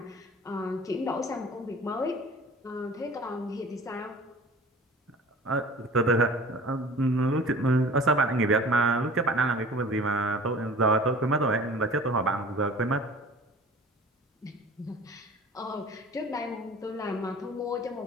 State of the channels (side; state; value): both; normal; correlation 0.43